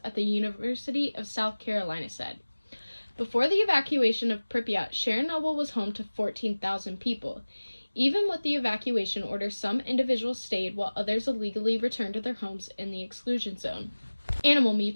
at the University of South Carolina, said. Before the evacuation of Pripyat, Chernobyl was home to 14,000 people. Even with the evacuation order, some individuals stayed while others illegally returned to their homes in the exclusion zone. Animal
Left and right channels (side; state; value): both; inverted; correlation -1.00